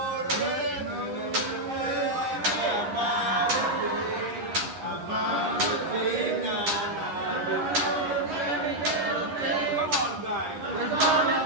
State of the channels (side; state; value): left; late; 10 ms